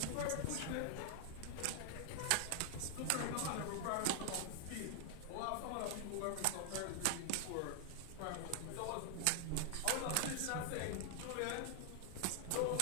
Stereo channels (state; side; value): different; both; correlation 0.00